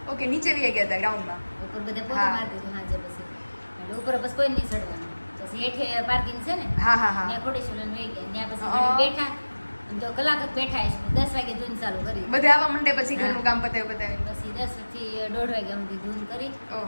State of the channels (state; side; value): inverted; both; correlation -1.00